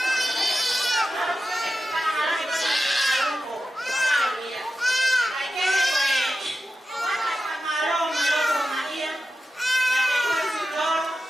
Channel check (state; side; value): normal; both; correlation 0.92